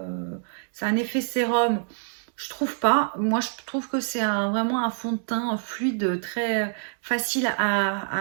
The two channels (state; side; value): silent; left; digital silence